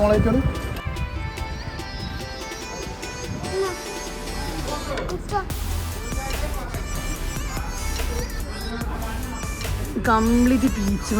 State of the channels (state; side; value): identical; both; correlation 1.00